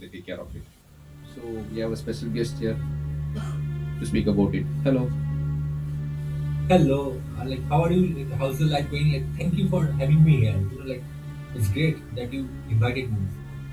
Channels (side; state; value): both; identical; correlation 1.00